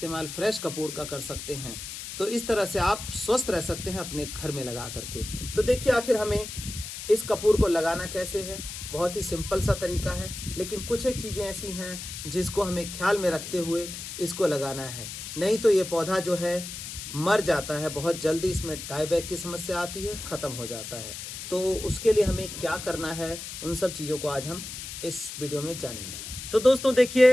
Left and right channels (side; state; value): left; noise; hiss, 9 dB below the sound